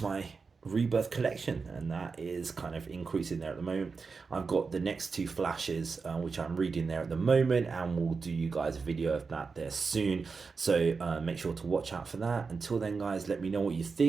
my Rebirth collection, and that is kind of increasing there at the moment. I've got the next two flashes, which I'm reading there at the moment, and we'll do you guys a video of that there soon. So make sure to watch out for that. Until then, guys, let me know what you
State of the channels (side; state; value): left; quieter; 4.8 dB